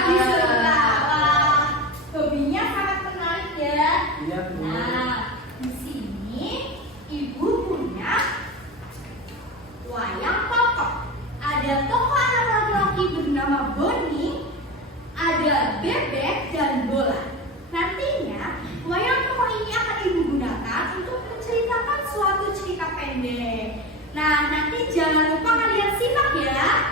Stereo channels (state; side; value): normal; both; correlation 0.25